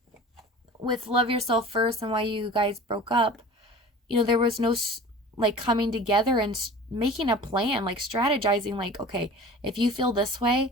with Love Yourself First and why you guys broke up, you know, there was no, like, coming together and making a plan, like, strategizing, like, okay, if you feel this way,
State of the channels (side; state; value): both; normal; correlation 0.40